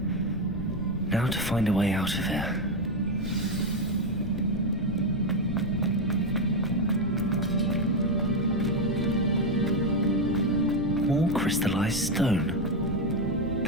Now to find a way out of here. More crystallized stone.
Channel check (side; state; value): left; noise; rumble, 8 dB below the sound